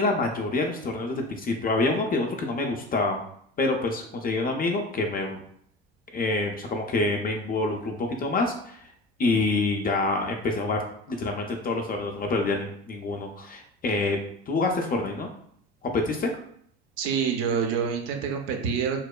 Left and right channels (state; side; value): normal; both; correlation 0.32